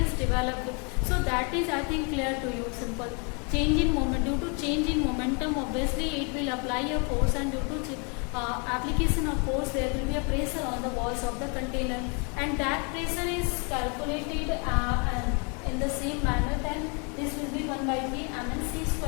developed. So that is I think clear to you, simple. Change in moment, due to change in momentum obviously it will apply a force, and due to application of force there will be a pressure on the walls of the container, and that pressure is calculated in the same manner. Then this will be 1 by 3 mn c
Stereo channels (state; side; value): quieter; right; 35.1 dB